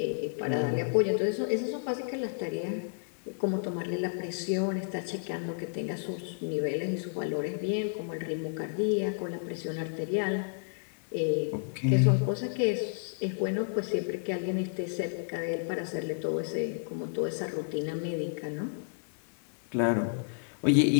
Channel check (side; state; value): right; silent; digital silence